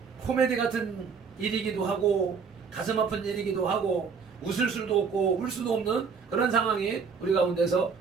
코미디 같은 일이기도 하고 가슴 아픈 일이기도 하고 웃을 수도 없고 울 수도 없는 그런 상황이 우리 가운데서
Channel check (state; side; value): quieter; left; 5.8 dB